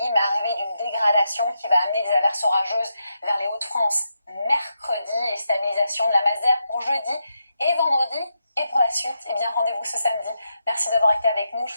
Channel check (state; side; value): inverted; both; correlation -0.84